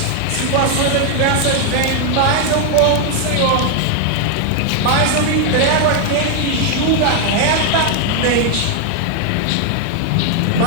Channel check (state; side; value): different; both; correlation 0.00